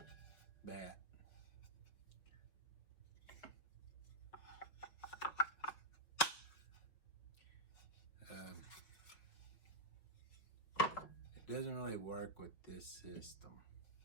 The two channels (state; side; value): late; right; 5.4 ms